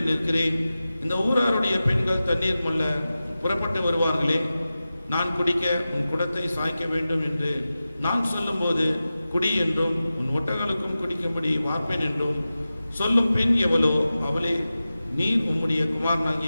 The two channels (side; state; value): both; inverted; correlation -0.94